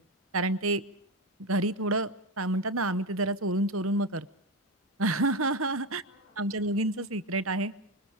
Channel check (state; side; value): normal; both; correlation 0.14